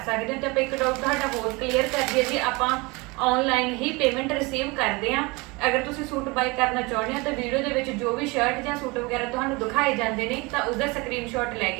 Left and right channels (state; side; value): quieter; left; 25.7 dB